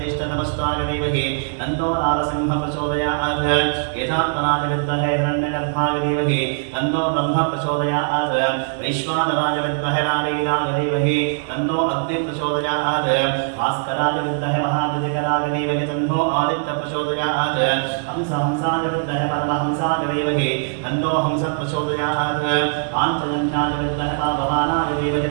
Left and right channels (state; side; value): silent; left; digital silence